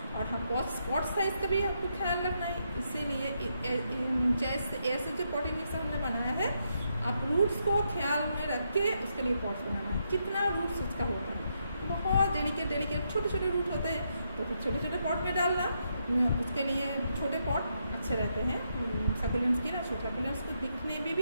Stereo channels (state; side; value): inverted; both; correlation -0.79